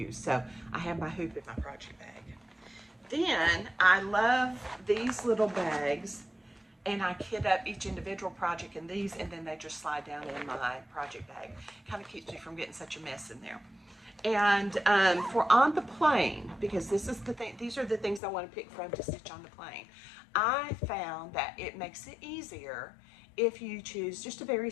So I have my hoop in my project bag. Then I love these little bags, and I kit up each individual project in these, and then they just slide down in my project bag. Kind of keeps me from getting such a mess in there. And for on the plane, because this is the thing, these are the things I want to pick from to stitch on the plane. I found that it makes it easier if you choose just a very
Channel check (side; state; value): right; drops out; at 18.2 s